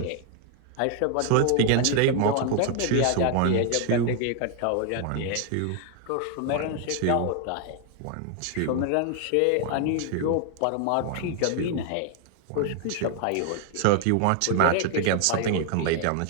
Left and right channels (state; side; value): different; both; correlation 0.00